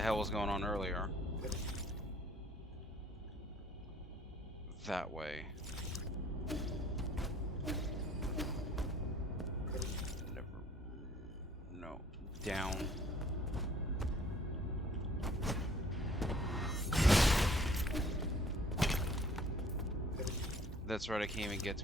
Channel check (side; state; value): both; normal; correlation 0.55